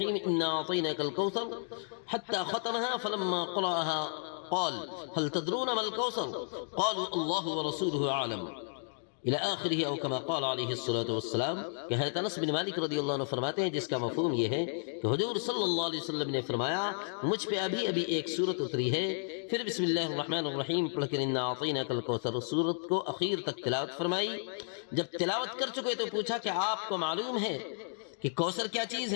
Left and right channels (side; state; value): right; silent; digital silence